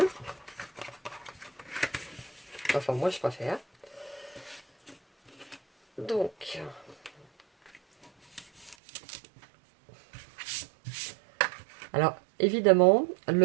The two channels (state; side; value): drops out; left; at 8.8 s